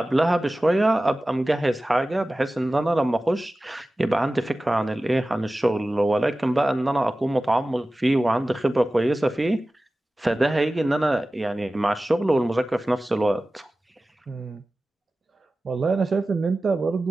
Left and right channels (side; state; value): both; normal; correlation 0.96